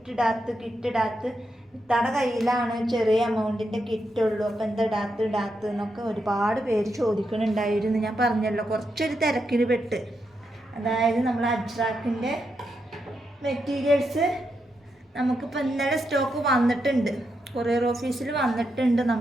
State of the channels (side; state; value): both; normal; correlation 0.83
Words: ഇത്താടെ കയ്യിലാണ് ചെറിയ എമൗണ്ടിൻ്റെ കിറ്റുള്ളൂ, അപ്പോൾ എന്താ ഇടാത്ത് എന്നൊക്കെ ഒരുപാട് പേര് ചോദിക്കുന്നുണ്ടായിരുന്നു. ഞാൻ പറഞ്ഞല്ലോ കുറച്ചൊരു തിരക്കിന് പെട്ട്. അതായത് നമ്മൾ അജ്രാക്കിൻ്റെ മെറ്റീരിയൽസ് നമുക്കിപ്പോൾ ഇന്നലെ സ്റ്റോക്ക് വന്നിട്ടുണ്ട്, കൊറിയർ ഓഫീസിൽ വന്നിട്ടുണ്ട്.